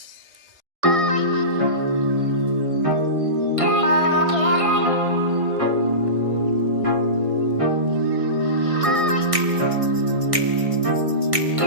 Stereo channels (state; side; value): late; left; 1.6 ms